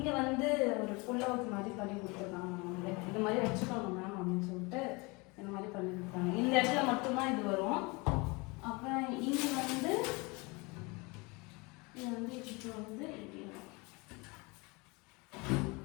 வந்து ஒரு ஃபுல்லாக மாதிரி பண்ணி கொடுத்துருக்காங்க. நம்மளே இந்த மாதிரி வச்சுக்கோங்க மேம் அப்படின்னு சொல்லிட்டு இந்த மாதிரி பண்ணி கொடுத்தாங்க. இந்த இடத்துல மட்டும்தான் இது வரும். அப்புறம் இங்கே வந்து இது வந்து இப்போ வந்து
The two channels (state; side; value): quieter; right; 26.9 dB